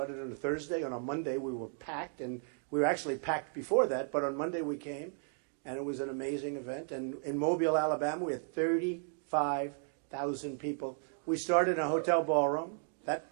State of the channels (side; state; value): left; silent; 55 dB below the other